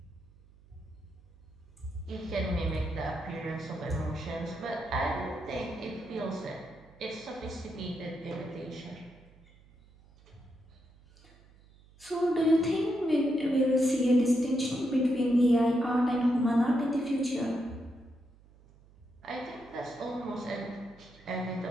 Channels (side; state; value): right; noise; hum, 26 dB below the sound